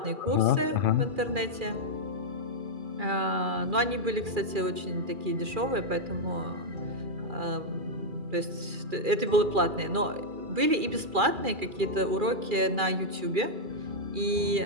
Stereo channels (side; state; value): left; late; 2.4 ms